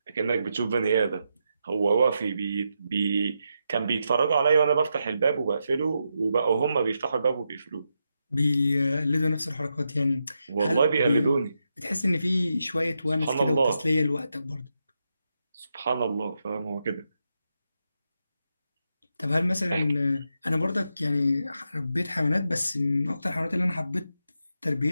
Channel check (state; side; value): inverted; both; correlation -0.85